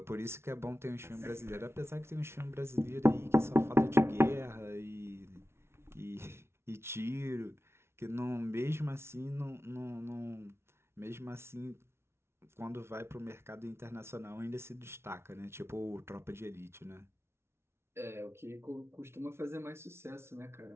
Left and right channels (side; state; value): left; late; 0.12 ms